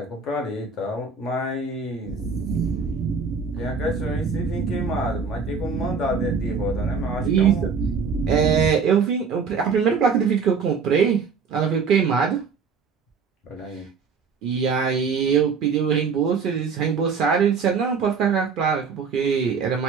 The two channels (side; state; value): left; quieter; 5.4 dB